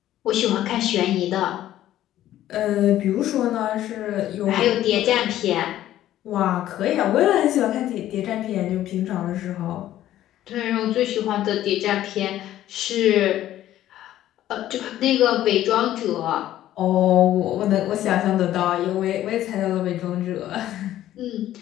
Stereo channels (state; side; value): quieter; right; 13.1 dB